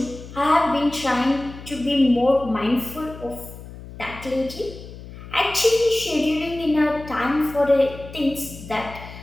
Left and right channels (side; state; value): left; noise; hum, 15 dB below the sound